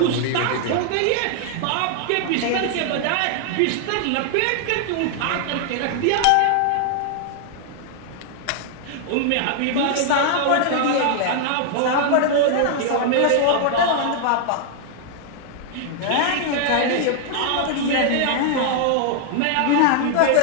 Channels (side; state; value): both; different; correlation 0.00